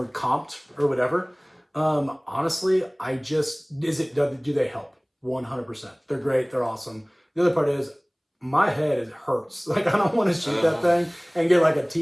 comped or whatever. Honestly, do they help? 100%. They're great. They're awesome. The other part is my head hurts. Like, I don't want to shoot that thing and get like a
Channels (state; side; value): identical; both; correlation 1.00